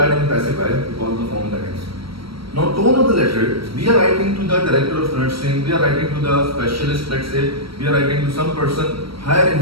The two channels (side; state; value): left; late; 0.75 ms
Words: in passive voice because of the form that is. Now, tone of the letter, we are writing to the director of nursing, we are writing to the specialist, let's say, we are writing to some person higher in